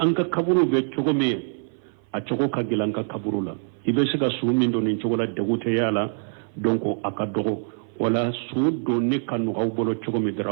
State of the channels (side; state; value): left; silent; 56 dB below the other